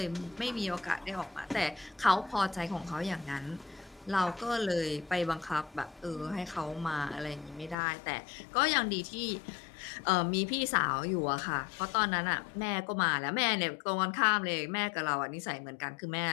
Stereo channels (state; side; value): drops out; right; at 7.8 s